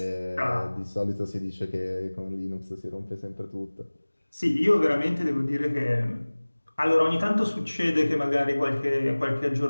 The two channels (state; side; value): inverted; both; correlation -1.00